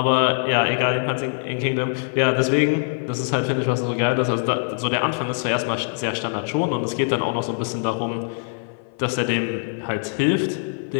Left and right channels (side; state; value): right; silent; 55 dB below the other